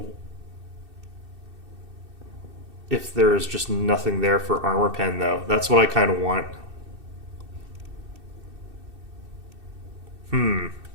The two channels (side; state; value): left; late; 2.6 ms